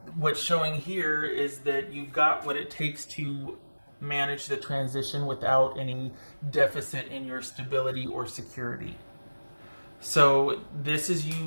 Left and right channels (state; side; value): inverted; both; correlation -1.00